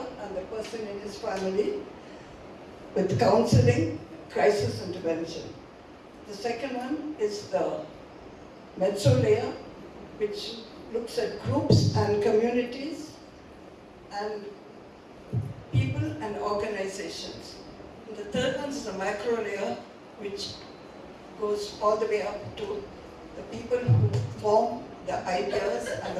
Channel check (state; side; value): identical; both; correlation 1.00